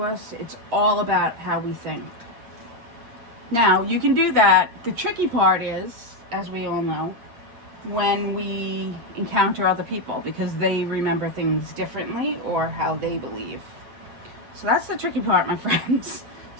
us. It's all about how we think. Now, you can do that. The tricky part is, as we all know, when we encounter other people, because they remember things differently or how they believe. So that's the tricky part, my friends.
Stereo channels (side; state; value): left; late; 8.5 ms